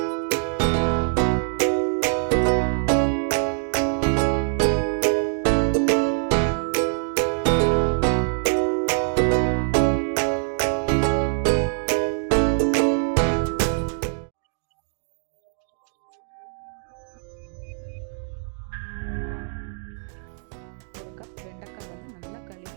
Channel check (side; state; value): left; silent; digital silence